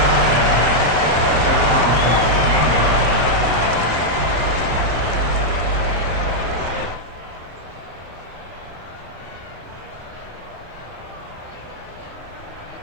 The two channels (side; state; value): left; late; 34 ms